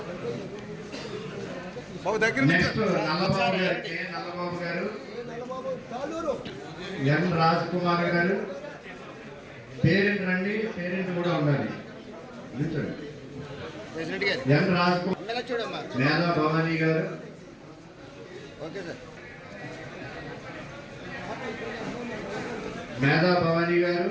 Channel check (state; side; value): identical; both; correlation 1.00